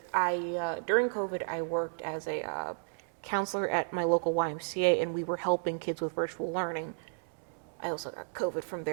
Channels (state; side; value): silent; left; digital silence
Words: during COVID, I worked as a counselor at my local YMCA, and we were helping kids with virtual learning. I also got COVID from